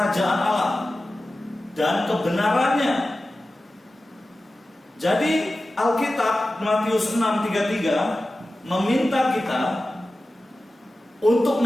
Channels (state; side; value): normal; both; correlation 0.95